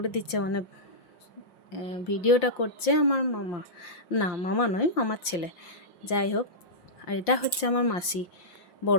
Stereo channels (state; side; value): late; right; 5.8 ms